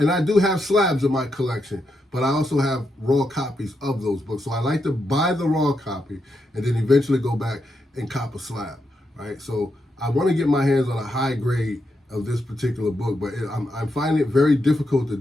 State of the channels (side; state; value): both; normal; correlation 0.83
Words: I do have slabs in my collection, but I also have raw copies of those books. So I like to buy the raw copy and then eventually go back and cop a slab, right? So I want to get my hands on a high grade of this particular book, but I'm finding it very difficult to